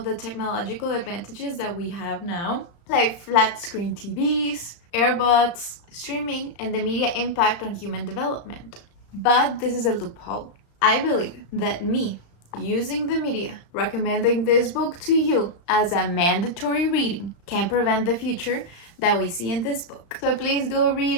the technological advantages that we have now, like flat screen TVs, earbuds, streaming, and the media impact on human development. But this is a loophole. I believe that me using the media, recommending this book to you as a mandatory reading, can prevent the future that we see in this book. So please go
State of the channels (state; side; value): late; right; 35 ms